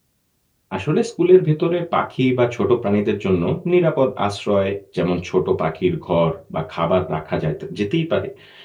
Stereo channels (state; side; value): identical; both; correlation 1.00